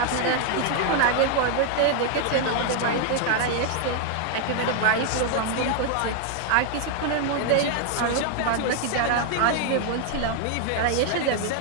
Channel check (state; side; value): different; both; correlation 0.00